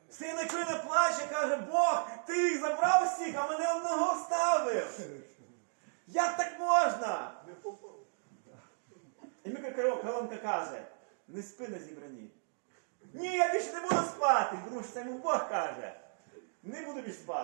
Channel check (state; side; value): silent; left; digital silence